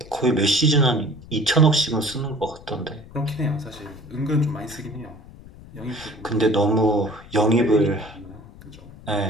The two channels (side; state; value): left; noise; rumble, 19 dB below the sound